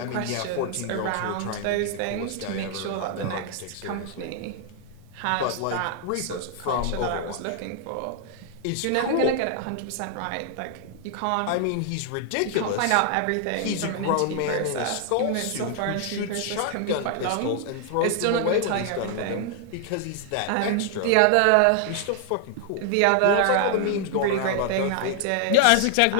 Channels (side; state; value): both; different; correlation 0.00